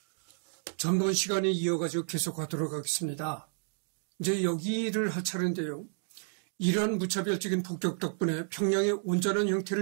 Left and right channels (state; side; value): silent; left; 55 dB below the other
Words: 전번 시간에 이어가지고 계속하도록 하겠습니다. 이제 여기를 할 차례인데요. 이러한 무차별적인 폭격 덕분에 평양의 온전한